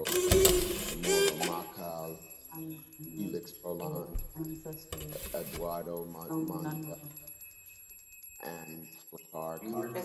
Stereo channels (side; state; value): both; identical; correlation 1.00